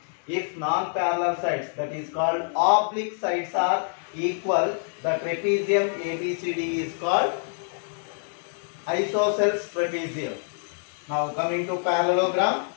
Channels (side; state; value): right; silent; digital silence